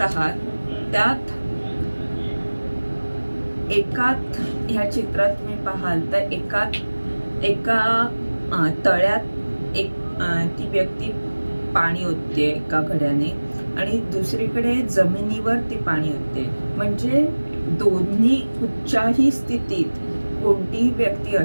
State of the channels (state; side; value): inverted; both; correlation -1.00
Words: आहात त्यात ह्या चित्रात तुम्ही पाहाल तर एका तळ्यात ती व्यक्ती पाणी ओतते एका घड्याने आणि दुसरीकडे जमिनीवर ती पाणी ओतते, म्हणजे दोन्ही कुठच्याही स्थितीत कोणतीही व्यक्ती